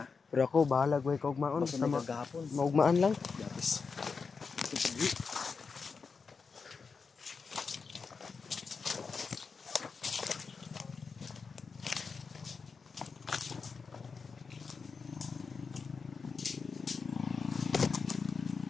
Pero ako bahala ko kaugmaon. Basta Basta magagahapon. maugmaan lang. Yapis.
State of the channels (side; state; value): right; quieter; 5.1 dB